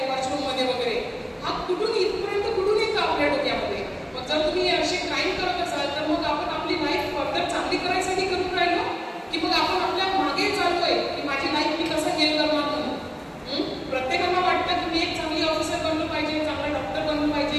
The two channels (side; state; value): both; identical; correlation 1.00